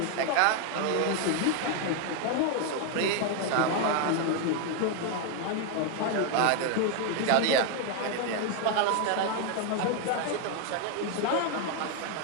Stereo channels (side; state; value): both; different; correlation 0.01